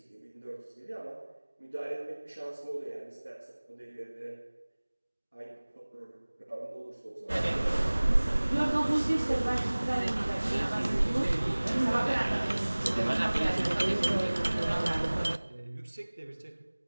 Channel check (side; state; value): both; inverted; correlation -1.00